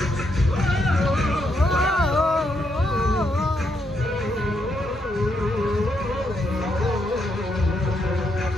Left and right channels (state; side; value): normal; both; correlation 0.78